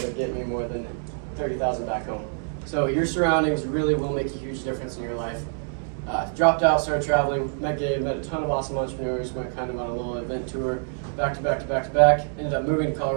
get me more than 30,000 back home. So your surroundings really will make a huge difference in your life. Dropped out, started traveling, met Gabe, met a ton of awesome entrepreneurs, went kind of on a little event tour, back to back to back to back. Ended up moving to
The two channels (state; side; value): silent; left; digital silence